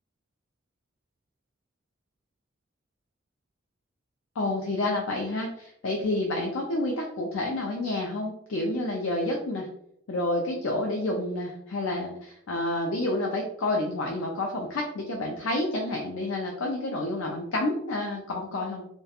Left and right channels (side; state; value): both; normal; correlation 0.17